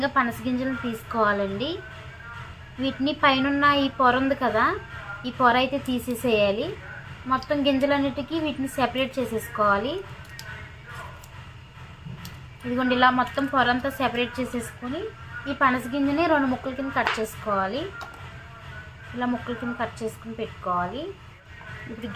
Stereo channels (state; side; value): identical; both; correlation 1.00